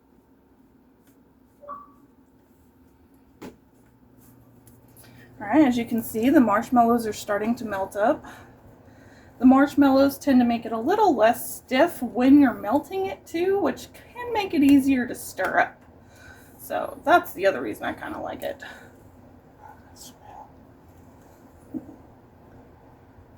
All right, as you can see, the marshmallows are starting to melt up. The marshmallows tend to make it a little less stiff when you're melting it too, which can make it easier to stir up. So that's the other reason I kind of like it.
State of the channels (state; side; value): identical; both; correlation 1.00